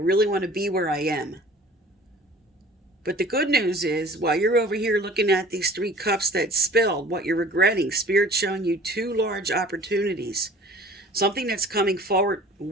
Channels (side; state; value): both; normal; correlation 0.46